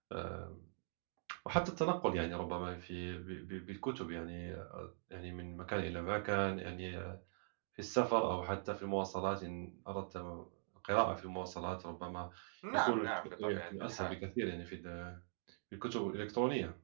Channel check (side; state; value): left; silent; digital silence